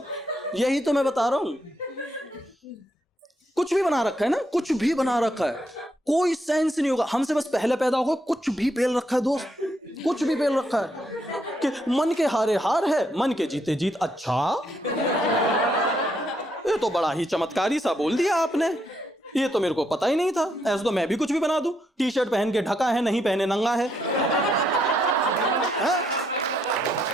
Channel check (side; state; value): both; normal; correlation 0.76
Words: यही तो मैं बता रहा हूं। कुछ भी बना रखा है ना, कुछ भी बना रखा है, कोई सेंस नहीं होगा। हमसे बस पहले पैदा होगा, कुछ भी पेल रखा है दोस्त, कुछ भी पेल रखा है कि मन के हारे हार है, मन के जीते जीत। अच्छा, ये तो बड़ा ही चमत्कारी सा बोल दिया आपने, ये तो मेरे को पता ही नहीं था। ऐसा तो मैं भी कुछ भी बना दूं, टी शर्ट पहन के ढका है, नहीं पहने नंगा है।